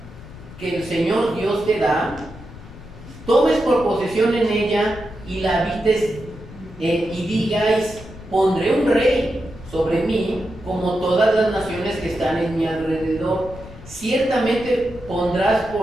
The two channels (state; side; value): noise; left; rumble, 16 dB below the sound